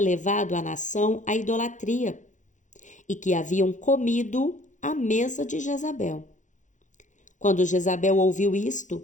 a nação à idolatria e que haviam comido à mesa de Jezabel. Quando Jezabel ouviu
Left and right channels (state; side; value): late; right; 0.36 ms